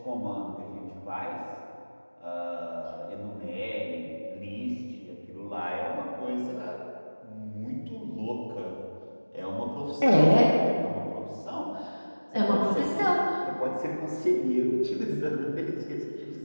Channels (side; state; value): both; inverted; correlation -1.00